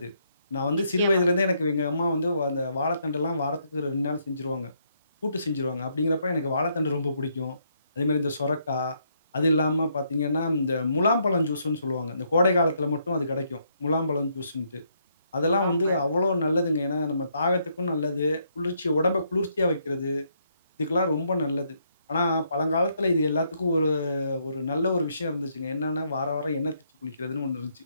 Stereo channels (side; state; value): both; inverted; correlation -0.74